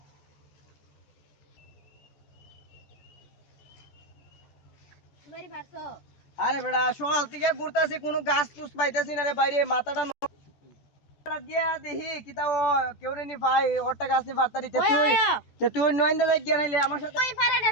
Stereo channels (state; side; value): late; right; 14 ms